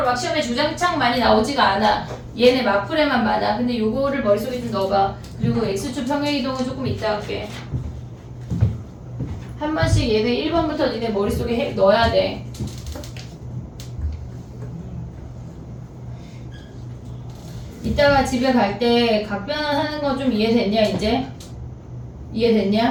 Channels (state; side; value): identical; both; correlation 1.00